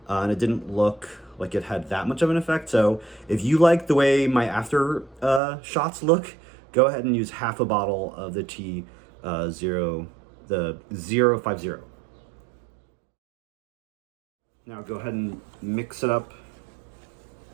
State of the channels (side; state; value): left; drops out; at 5.4 s